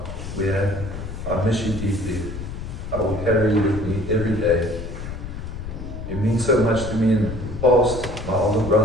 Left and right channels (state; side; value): noise; left; rumble, 8 dB below the sound